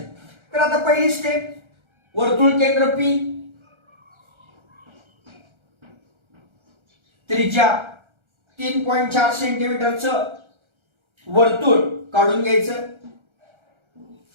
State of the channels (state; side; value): late; left; 1.3 ms